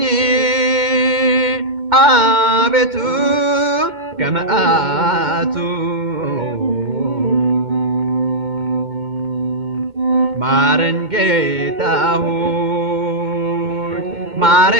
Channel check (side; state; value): left; late; 2.2 ms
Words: አቤቱ ከመዓቱ ማረኝ ጌታ ሆይ